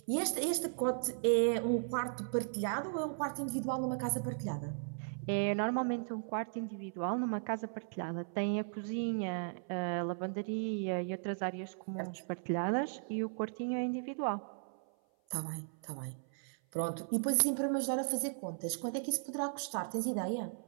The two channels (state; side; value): silent; left; 53 dB below the other